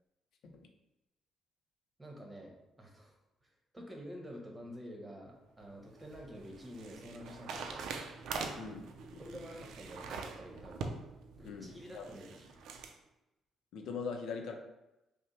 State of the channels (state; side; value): normal; both; correlation 0.63